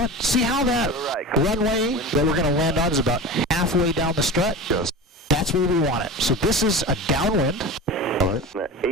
See how that runway that we're going to land on is about halfway down the strut? Yes. That's where we want it. So this is a downwind. All right.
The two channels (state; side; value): normal; both; correlation 0.30